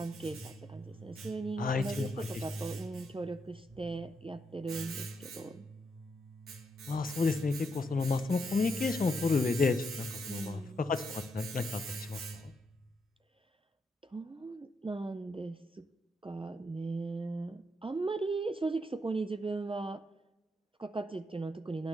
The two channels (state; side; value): normal; both; correlation 0.79